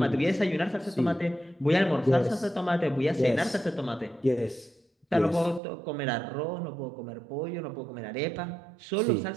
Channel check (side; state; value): left; drops out; at 5.6 s